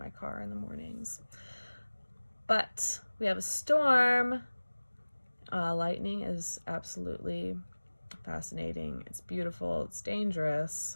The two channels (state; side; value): inverted; both; correlation -1.00